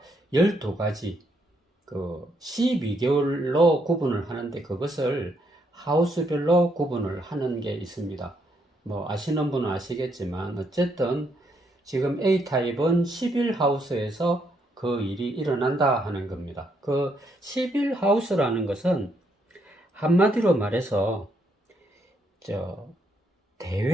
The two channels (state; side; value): normal; both; correlation 0.75